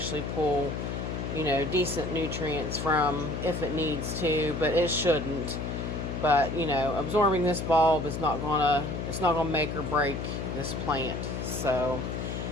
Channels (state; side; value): noise; left; hum, 4 dB below the sound